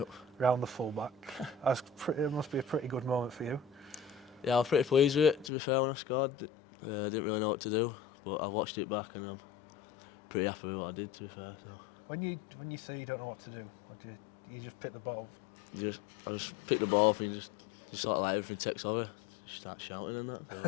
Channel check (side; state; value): right; drops out; at 5.5 s